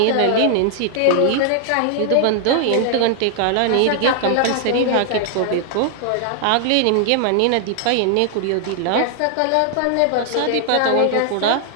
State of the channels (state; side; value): different; both; correlation 0.00